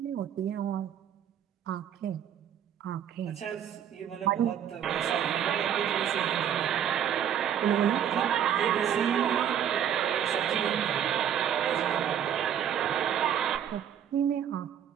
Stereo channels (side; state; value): left; quieter; 9.4 dB